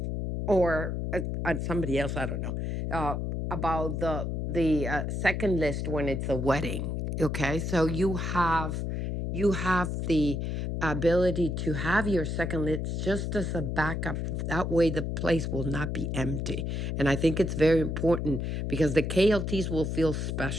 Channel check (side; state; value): left; noise; hum, 2 dB below the sound